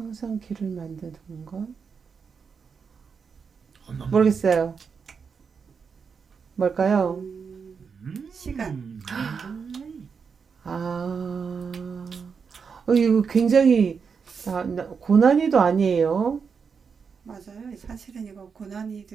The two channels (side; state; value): left; quieter; 5.9 dB